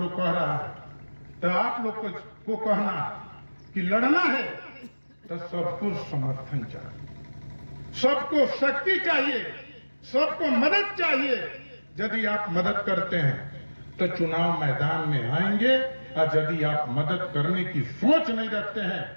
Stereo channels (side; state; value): both; inverted; correlation -1.00